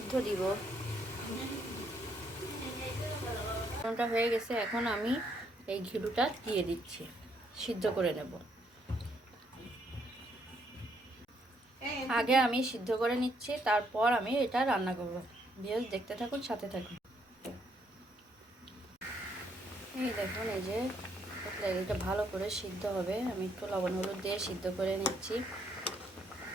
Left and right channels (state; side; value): normal; both; correlation 0.72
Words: দিব। লবণটা হয়ে গেছে, এখন আমি এই ঘিলুটা দিয়ে দিচ্ছি, সিদ্ধ করে নেব। আগে আমি সিদ্ধ করে নিচ্ছি, তারপর আমি এটা রান্না করব। ভিউয়ার্স, দেখতে থাকুন, সাথে থাকুন। এই দেখুন, এই যে এটা ভালো করে সিদ্ধ হবে। আমি একটু লবণ হলুদ দিয়ে সিদ্ধ করে নিচ্ছি,